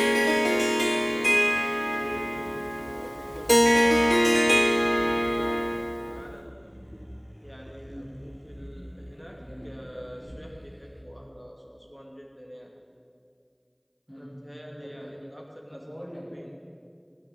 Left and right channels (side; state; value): both; identical; correlation 1.00